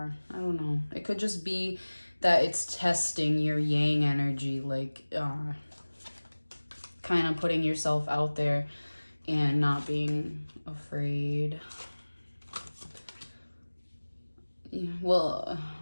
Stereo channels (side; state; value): both; inverted; correlation -1.00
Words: I don't know. It could just be that it's testing your Yang energy, like kind of putting yourself out there and not being afraid. Yeah, well,